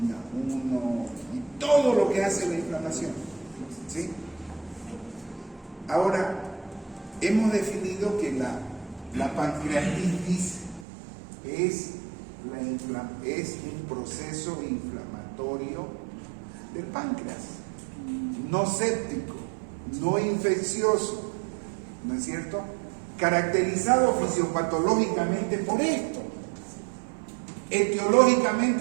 1 y todo lo que hace la inflamación. ¿Sí? Ahora, hemos definido que la pancreatitis es un proceso inflamatorio del páncreas, no séptico, no infeccioso, ¿no es cierto? caracterizado fisiopatológicamente por esto,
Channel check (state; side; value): drops out; left; at 10.9 s